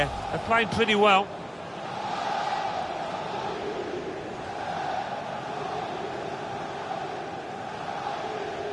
They're playing pretty well.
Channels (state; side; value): identical; both; correlation 1.00